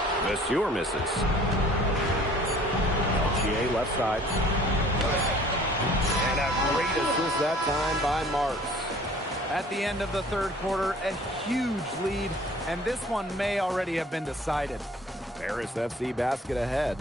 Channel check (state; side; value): normal; both; correlation 0.51